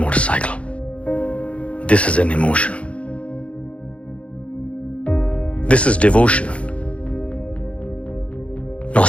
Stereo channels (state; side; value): late; right; 0.062 ms